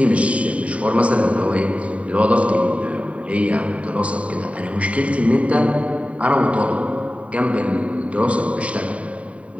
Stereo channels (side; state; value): left; late; 0.066 ms